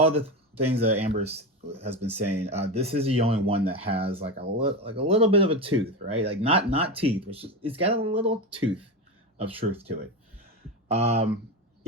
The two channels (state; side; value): normal; both; correlation 0.19